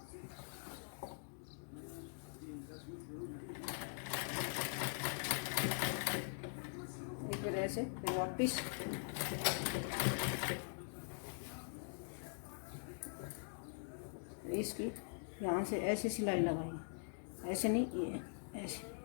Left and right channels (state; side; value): silent; right; digital silence